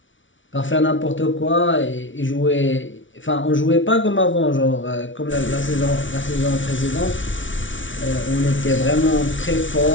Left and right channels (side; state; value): right; late; 0.56 ms